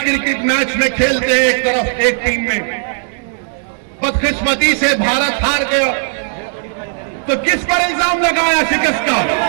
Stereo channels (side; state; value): left; silent; digital silence